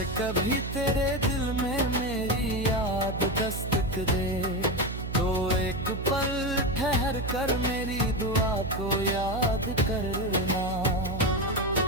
कभी तेरे दिल में मेरी याद दस्तक दे, तो एक पल ठहर कर मेरी दुआ को याद करना।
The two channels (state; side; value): noise; right; hum, 6 dB below the sound